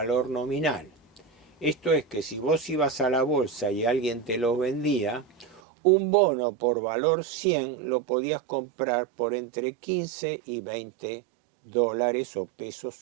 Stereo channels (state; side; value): drops out; left; at 5.6 s